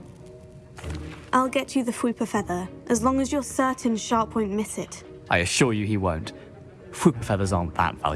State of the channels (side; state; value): both; identical; correlation 1.00